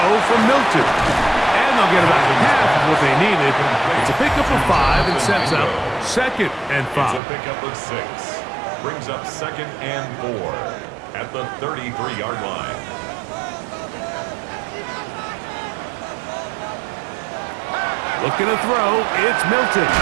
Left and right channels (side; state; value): left; drops out; at 7.2 s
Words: from Milton. And they'll get about half of what they needed. It's a pickup of 5 and sets up 2nd and 5. It's a pickup of 6. Brings up 2nd and 4 at the 33-yard line. Looking to throw, it's Milton.